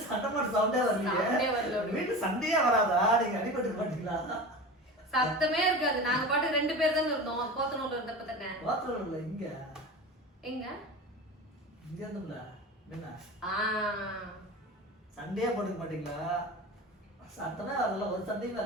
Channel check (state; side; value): normal; both; correlation 0.31